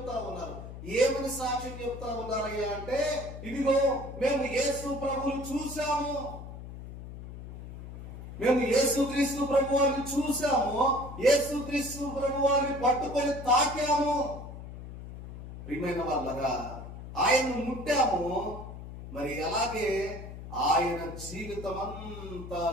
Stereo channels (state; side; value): noise; left; hum, 12 dB below the sound